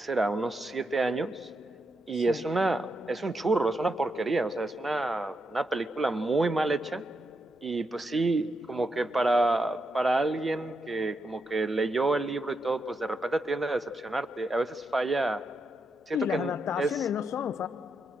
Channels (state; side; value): normal; both; correlation 0.83